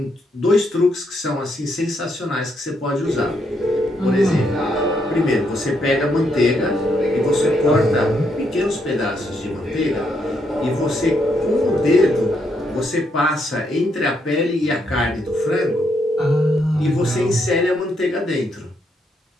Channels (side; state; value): both; normal; correlation 0.76